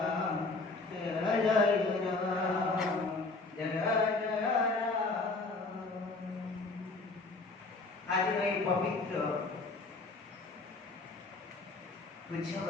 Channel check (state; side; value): quieter; right; 3.5 dB